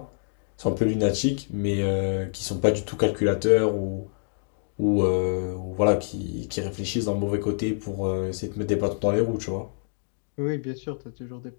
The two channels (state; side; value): silent; right; digital silence